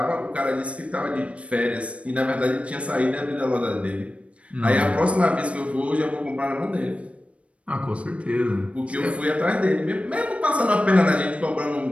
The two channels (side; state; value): left; late; 0.063 ms